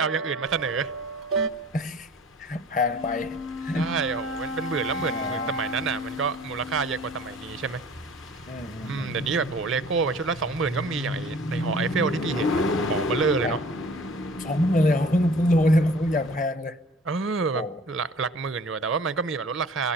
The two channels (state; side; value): normal; both; correlation 0.48